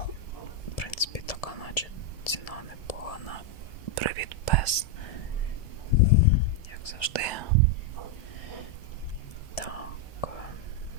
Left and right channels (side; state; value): right; late; 1.5 ms